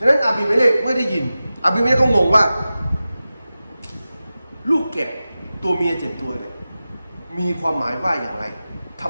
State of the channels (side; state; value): both; inverted; correlation -0.94